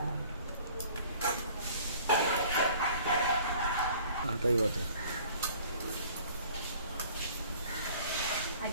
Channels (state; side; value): inverted; both; correlation -0.51